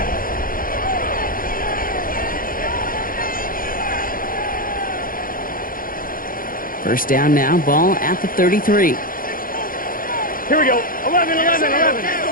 First down now, ball at the 33. Here we go. 11, 11, 11.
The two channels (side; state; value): right; late; 0.41 ms